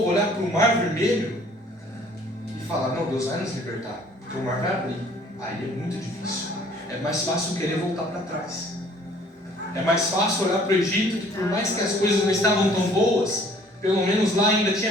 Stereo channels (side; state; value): both; normal; correlation 0.56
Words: olhar para o Mar Vermelho e falar, não, Deus vai nos libertar, porque o mar vai abrir. Aí é muito difícil. É mais fácil querer voltar para trás. É mais fácil olhar para o Egito, que por mais que as coisas não estavam tão boas, pelo menos lá ainda